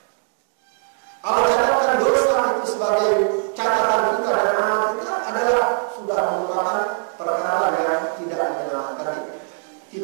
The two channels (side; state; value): left; silent; 65 dB below the other